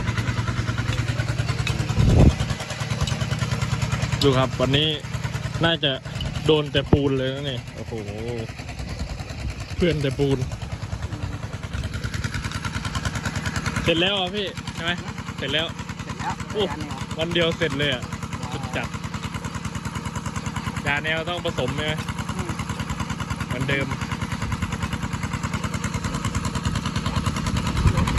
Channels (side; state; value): both; identical; correlation 1.00